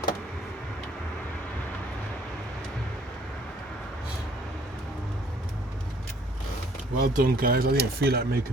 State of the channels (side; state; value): both; normal; correlation 0.60